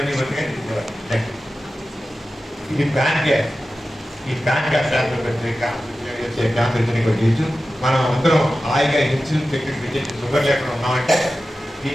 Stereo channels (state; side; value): normal; both; correlation 0.94